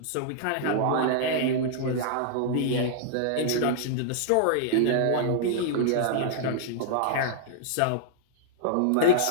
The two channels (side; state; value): both; different; correlation -0.01